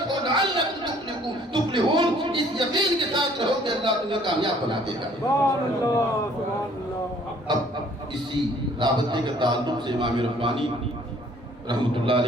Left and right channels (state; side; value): normal; both; correlation 0.58